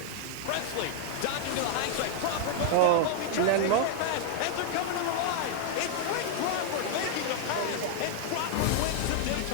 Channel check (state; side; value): different; both; correlation 0.00